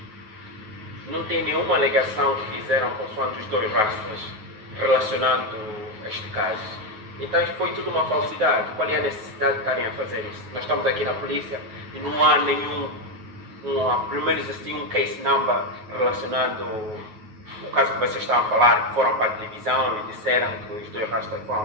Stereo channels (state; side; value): late; left; 9.4 ms